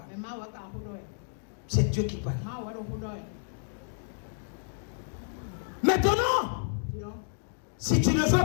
C'est Dieu qui parle. Maintenant, si tu ne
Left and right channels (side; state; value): right; silent; digital silence